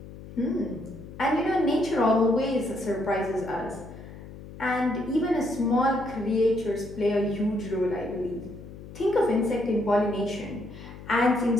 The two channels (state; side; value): noise; left; hum, 15 dB below the sound